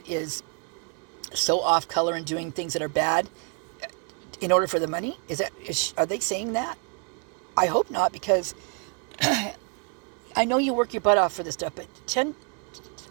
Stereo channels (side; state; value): left; quieter; 35.8 dB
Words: is so off color and doing things that are bad in order for the money? Are they saying that? I hope not, because I know you work your butt off for this stuff, but